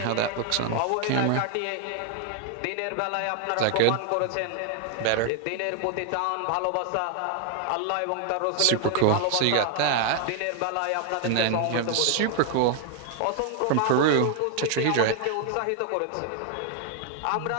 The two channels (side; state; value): both; different; correlation 0.00